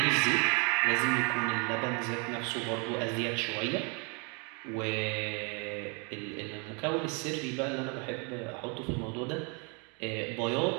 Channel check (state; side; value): quieter; left; 33.3 dB